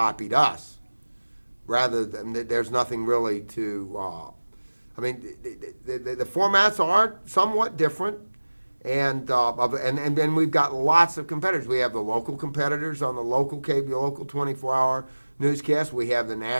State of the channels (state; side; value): inverted; both; correlation -1.00